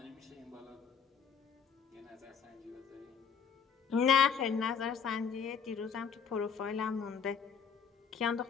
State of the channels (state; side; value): quieter; right; 6.7 dB